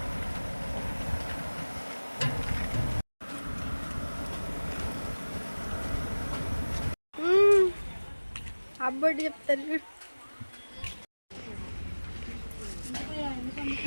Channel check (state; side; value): inverted; both; correlation -1.00